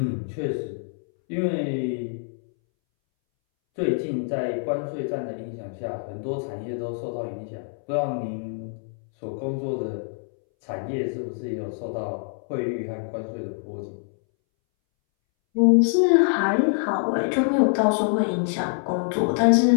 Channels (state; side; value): silent; right; 62 dB below the other